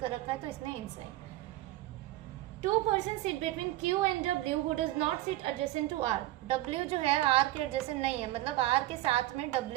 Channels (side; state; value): left; quieter; 16.4 dB